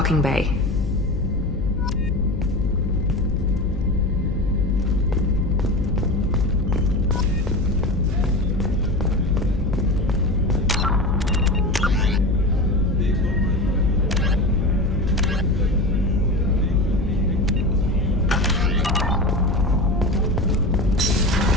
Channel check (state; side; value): noise; left; hum, 3 dB below the sound